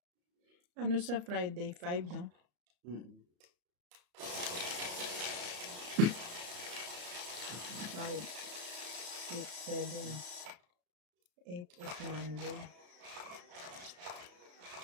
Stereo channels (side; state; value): left; late; 34 ms